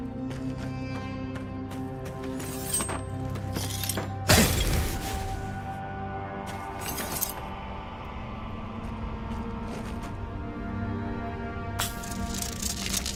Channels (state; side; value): identical; both; correlation 1.00